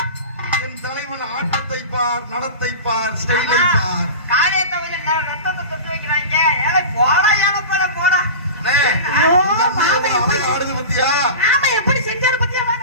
என் தலைவன் ஆட்டத்தை பார், நடத்தை பார், ஸ்டைலை பார். காரியத்தை வந்து ரத்தத்தை தொட்டு வைக்கிறாங்க. ஏழை போடா, ஏழை போல போடா. அண்ணே, ஐயோ, இந்த அண்ணன் மாமே எவ்வளவு எப்படி அழகா ஆடுது பாத்தியா? ஆமா எப்படி செஞ்சாரு பத்தியா?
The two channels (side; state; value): both; inverted; correlation -0.31